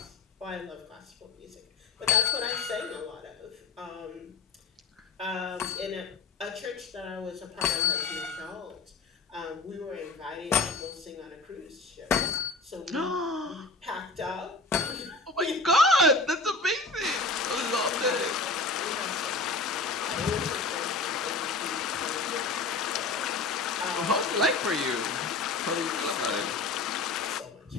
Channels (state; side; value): quieter; right; 3.7 dB